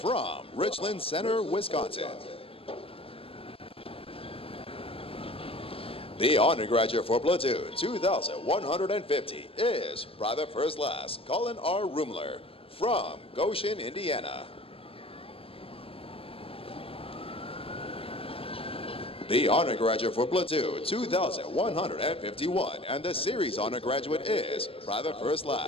Richland Center, Wisconsin. The honor graduate for platoon 2150 is Private First Class Colin R. Rumler from Goshen, Indiana. The honor graduate for platoon 2151 and the series honor graduate is Private First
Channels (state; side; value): late; right; 0.27 ms